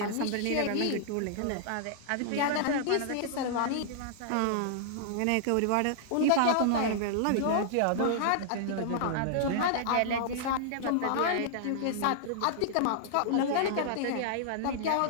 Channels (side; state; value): both; different; correlation -0.01